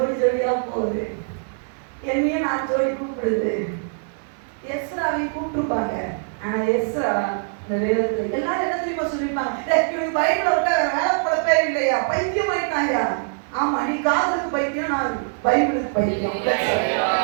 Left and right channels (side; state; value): left; silent; 64 dB below the other